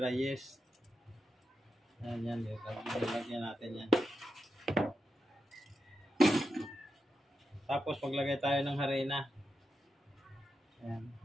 yeast. Ayan, lagyan natin yan. Tapos maglagay tayo ng harina. Ayan.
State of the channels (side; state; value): both; normal; correlation 0.88